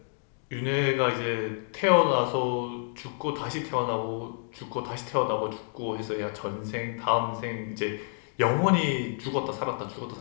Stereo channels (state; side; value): silent; right; 59 dB below the other